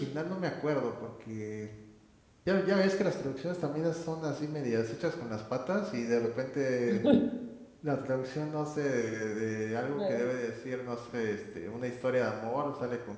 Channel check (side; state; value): both; identical; correlation 1.00